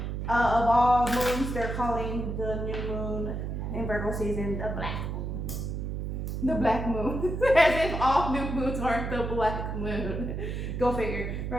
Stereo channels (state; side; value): noise; right; hum, 4 dB below the sound